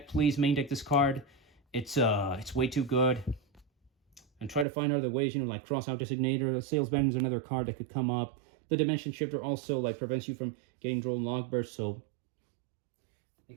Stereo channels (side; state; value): left; drops out; at 4.7 s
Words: please main deck this card. It's way too good. And try to find other ways, like Crossout Designator, Sales Banner is another card that could come up. The Dimension Shifter also prevents you from getting Droll and Logbird, so think